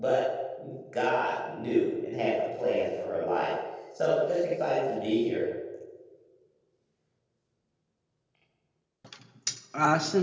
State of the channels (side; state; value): both; identical; correlation 1.00